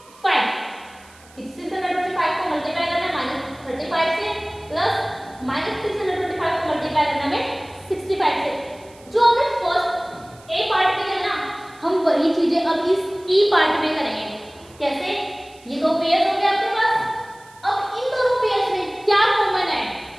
625 को मल्टीप्लाई करना है -35 से प्लस -625 को मल्टीप्लाई करना है 65 से। जो हमने फर्स्ट ए पार्ट में किया ना, हम वही चीजें अब इस ई पार्ट में करेंगे। कैसे? ये दो पेयर्स हो गए आपके पास। अब इन दोनों पेयर्स में क्या कॉमन है?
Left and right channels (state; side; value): noise; right; hiss, 26 dB below the sound